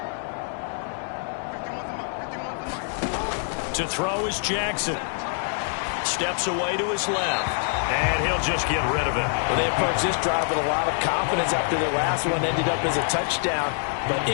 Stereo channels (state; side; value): silent; right; 61 dB below the other